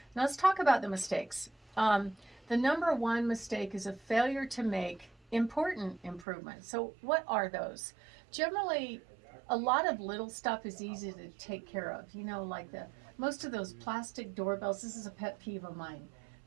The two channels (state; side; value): drops out; left; at 6.2 s